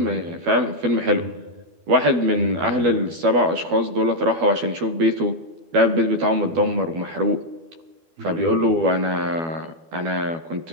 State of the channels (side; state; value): left; late; 12 ms